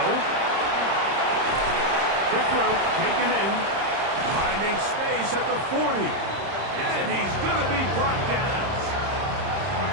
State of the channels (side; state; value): left; late; 30 ms